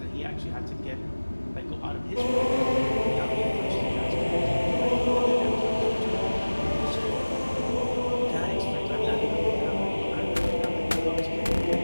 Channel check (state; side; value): inverted; both; correlation -1.00